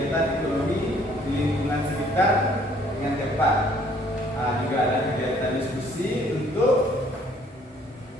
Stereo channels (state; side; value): normal; both; correlation 0.61